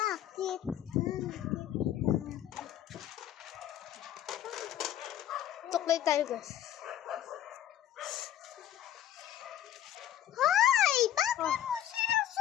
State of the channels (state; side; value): quieter; right; 11.4 dB